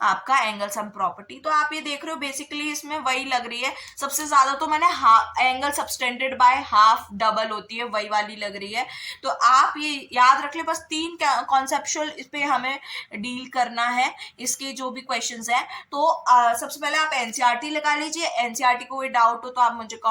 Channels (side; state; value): both; identical; correlation 1.00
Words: आपका एंगल सम प्रॉपर्टी। तो आप ये देख रहे हो बेसिकली इसमें वही लग रही है, सबसे ज्यादा तो मैंने angle subtended by half double होती है वही वाली लग रही है। तो आप ये याद रख ले, बस 3 कॉन्सेप्चुअल इस पे हमें डील करना है, इसके जो भी क्वेश्चंस हैं। तो सबसे पहले आप एनसीईआरटी लगा लीजिए, एनसीईआरटी को कोई डाउट हो तो आप मुझे